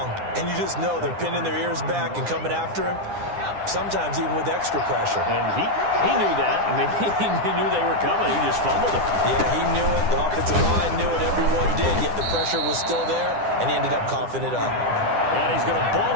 and you just know they're pinning their ears back and coming after him, sometimes even with extra pressure. And he knew that. I mean, he knew they were coming. He just fumbled it. Yeah, he knew it. The offensive line knew it. Everyone did, yet the pressure was still there, and he ended up coughing it up. And he's going to ball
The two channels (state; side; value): late; left; 9.9 ms